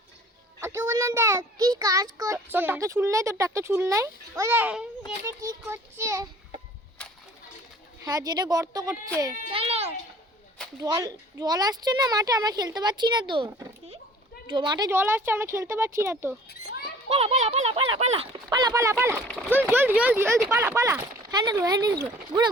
ওকে বললাম দেখ কি কাজ করছে। তোর ট্রাক্টরে চুল নাই? তোর ট্রাক্টরে চুল নাই? ওরে এটা কি করছে? হ্যাঁ, যেটা গর্ত করছে। চলো। জল জল আসছে না মাঠে, আমরা খেলতে পারছি না তো। মাঠে জল আসছে, আমরা খেলতে পারছি না তো। পালা পালা পালা পালা পালা পালা পালা পালা, জলদি জলদি জলদি জলদি পালা পালা। হ্যান্ডেল ঘুরে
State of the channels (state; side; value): normal; both; correlation 0.50